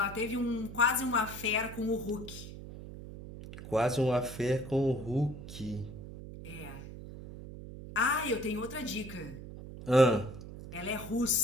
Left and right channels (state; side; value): noise; right; hum, 12 dB below the sound